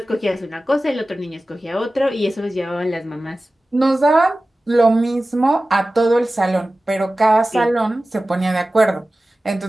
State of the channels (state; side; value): normal; both; correlation 0.96